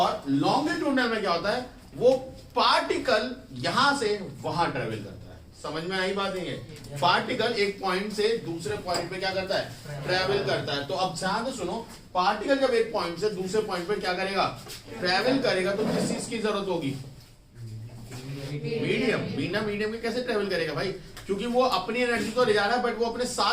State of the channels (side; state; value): both; identical; correlation 1.00